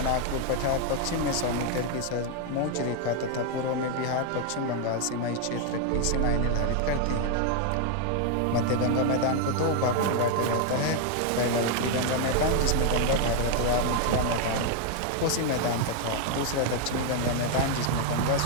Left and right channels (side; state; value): both; different; correlation 0.00